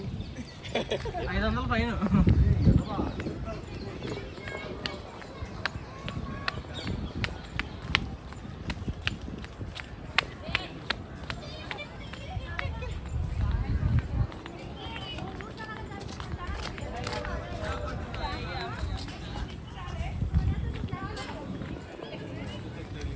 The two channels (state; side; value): identical; both; correlation 1.00